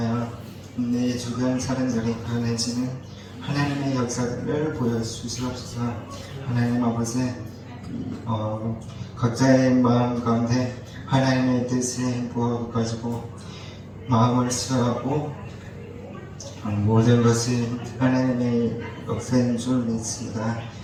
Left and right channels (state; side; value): identical; both; correlation 1.00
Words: 내 주변 사람들이 변해지는 하나님의 역사들을 보여주시옵소서. 하나님 아버지 각자의 마음 가운데 하나님의 뜻을 부어가지고 마음을 수하고 모든 것이 하나님의 역사인 줄 믿습니다.